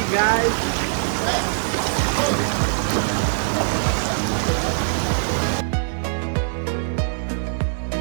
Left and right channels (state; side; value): silent; left; digital silence